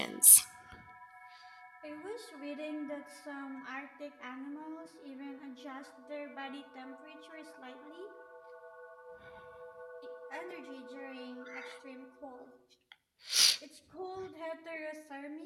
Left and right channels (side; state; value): both; identical; correlation 1.00